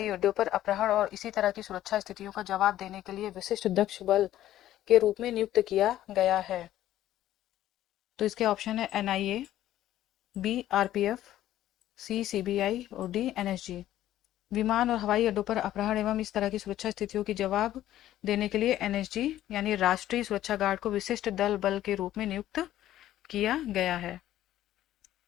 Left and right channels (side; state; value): right; quieter; 13.2 dB